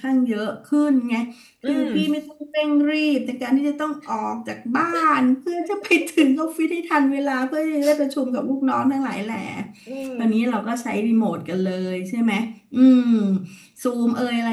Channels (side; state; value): both; identical; correlation 1.00